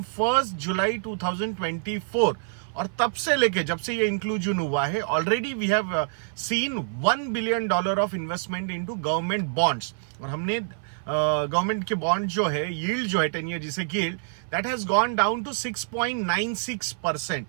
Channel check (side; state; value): left; silent; 55 dB below the other